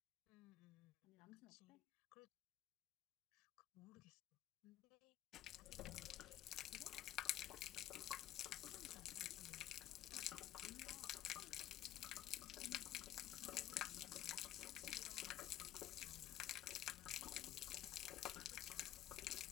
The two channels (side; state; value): right; quieter; 12.4 dB